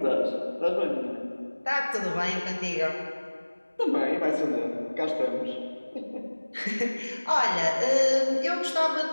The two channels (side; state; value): both; inverted; correlation -1.00